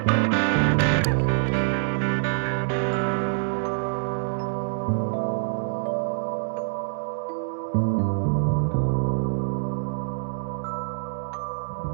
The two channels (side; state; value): left; silent; digital silence